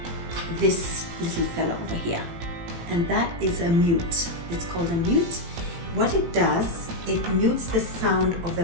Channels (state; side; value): late; left; 18 ms